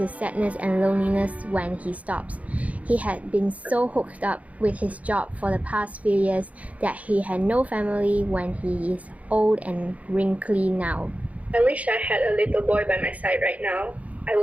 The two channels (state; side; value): late; left; 0.068 ms